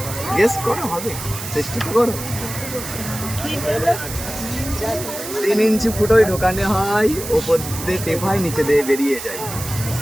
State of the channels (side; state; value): right; noise; hiss, 9 dB below the sound